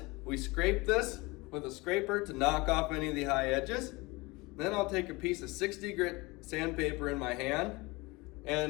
we scrape this with a scraper to knock off any of the high edges. Then I'll take a piece of 60 grit sandpaper in my hand,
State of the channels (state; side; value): quieter; right; 23.8 dB